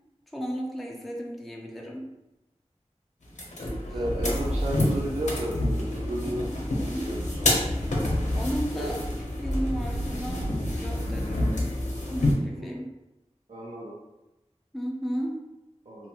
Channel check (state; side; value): normal; both; correlation 0.83